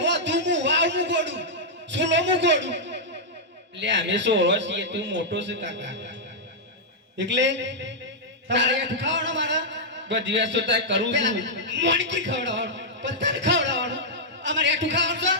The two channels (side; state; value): both; normal; correlation -0.07